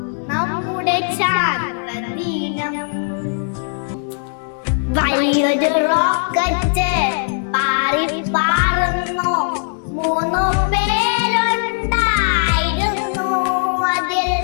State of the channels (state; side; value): silent; right; digital silence